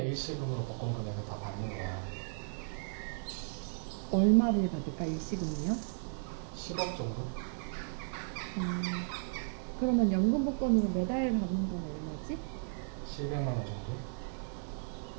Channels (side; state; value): left; silent; 54 dB below the other